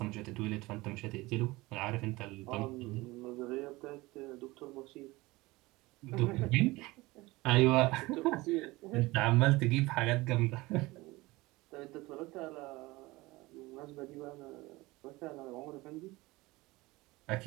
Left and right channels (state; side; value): quieter; left; 21.1 dB